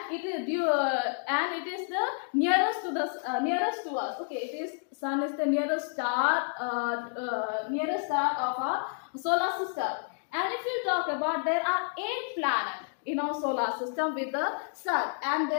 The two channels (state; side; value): silent; right; 58 dB below the other